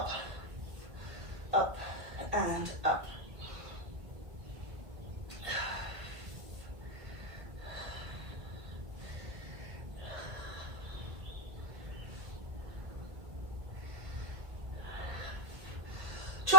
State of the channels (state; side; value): late; left; 1.8 ms